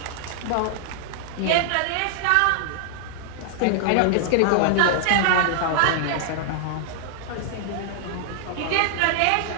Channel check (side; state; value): both; different; correlation -0.01